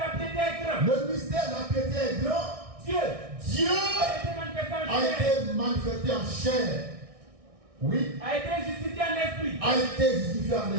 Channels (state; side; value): late; left; 1.6 ms